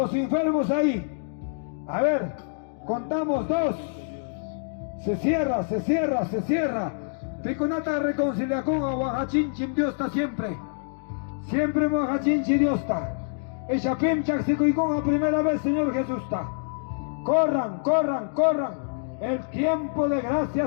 enfermos ahí. A ver, contamos 2. Se cierra. Piconata reconciliación a Oaxachinchim Dios está siempre. Siempre Oaxachinchi Dios está. Ella pimchak si con a primera vez Señor Jesús está. Corran. El tiempo de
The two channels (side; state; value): right; silent; digital silence